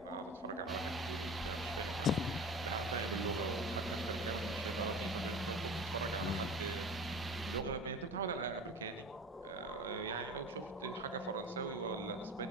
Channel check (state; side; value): normal; both; correlation 0.35